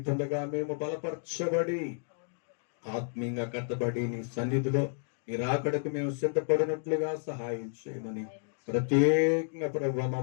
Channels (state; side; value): silent; right; digital silence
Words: మేము బలపరచబడి ఆత్మీయంగా కట్టబడి నీ సన్నిధిలో నీ రాకడకు మేము సిద్ధపడినట్లుగా సహాయం చేయమని ప్రత్యేకంగా ప్రభా